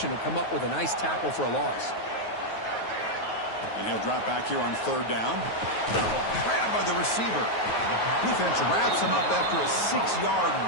to come up with a nice tackle for a loss. And he'll drop back here on third down. Grabbed by the receiver. Defense wraps him up after a 6-yard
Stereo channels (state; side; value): late; right; 9.4 ms